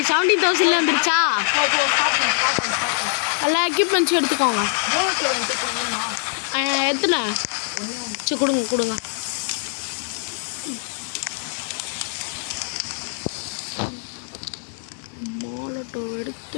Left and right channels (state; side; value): silent; right; digital silence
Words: வந்துருச்சா? எல்லா எக்யூப்மெண்ட்ஸும் எடுத்துக்கோங்க. எத்தனை? சரி கொடுங்க. மாலட்டோ